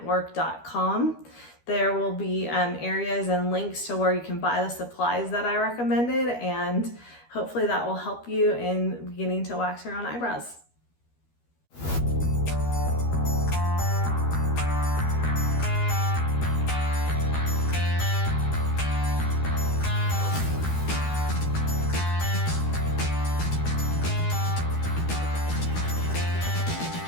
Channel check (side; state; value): right; late; 12 ms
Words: There will be areas and links to where you can buy the supplies that I recommended, and hopefully that will help you in beginning to wax your own eyebrows.